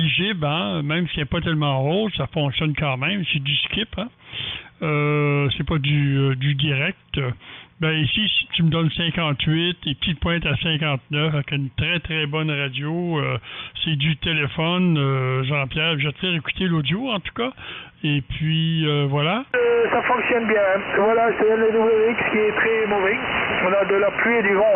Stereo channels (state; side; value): identical; both; correlation 1.00